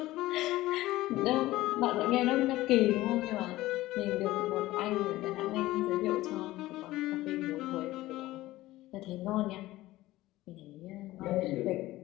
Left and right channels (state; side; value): quieter; right; 17.1 dB